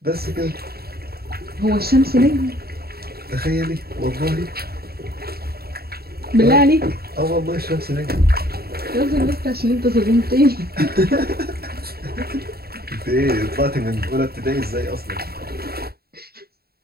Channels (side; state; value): left; late; 0.45 ms